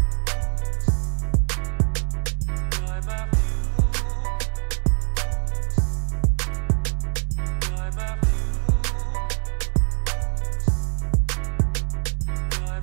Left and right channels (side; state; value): left; silent; 63 dB below the other